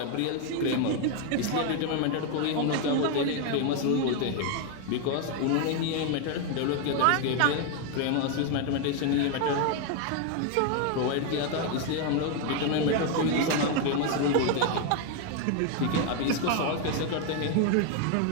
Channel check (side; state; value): both; different; correlation 0.01